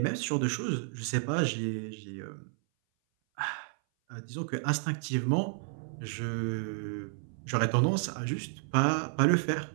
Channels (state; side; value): silent; left; 57 dB below the other